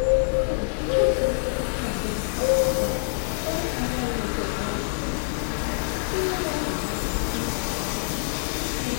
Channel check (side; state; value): right; silent; digital silence